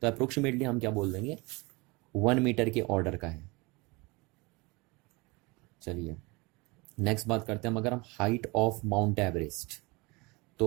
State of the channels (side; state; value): left; quieter; 25.9 dB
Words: तो अप्रोक्सीमेटली हम क्या बोल देंगे, 1 मीटर के ऑर्डर का है। चलिए नेक्स्ट बात करते हैं हम, अगर हम हाइट ऑफ माउंट एवरेस्ट,